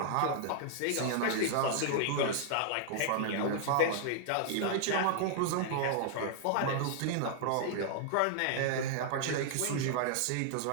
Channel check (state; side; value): different; both; correlation -0.01